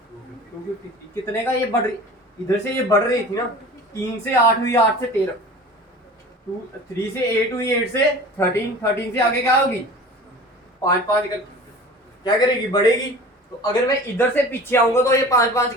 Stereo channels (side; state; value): both; normal; correlation 0.40